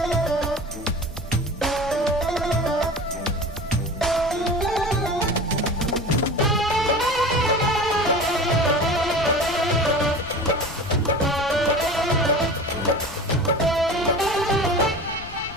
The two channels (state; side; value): noise; left; rumble, 15 dB below the sound